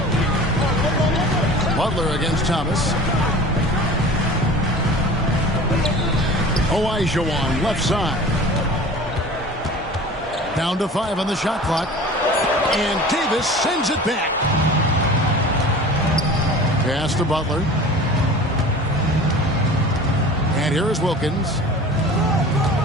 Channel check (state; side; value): normal; both; correlation 0.40